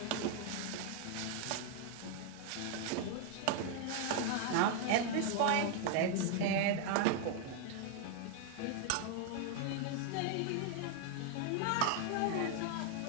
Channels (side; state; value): both; different; correlation 0.00